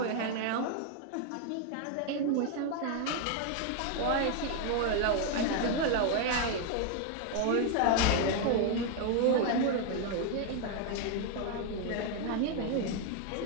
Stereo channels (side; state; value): both; different; correlation 0.01